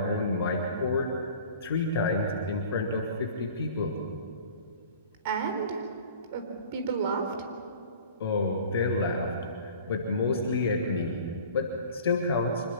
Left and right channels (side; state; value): both; inverted; correlation -0.45